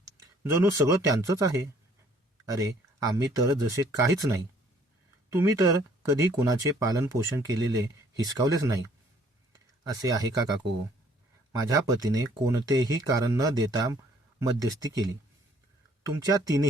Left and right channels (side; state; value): both; normal; correlation 0.60